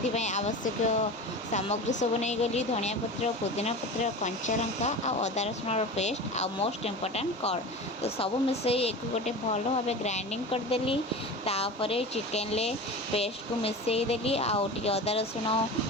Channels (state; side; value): normal; both; correlation 0.31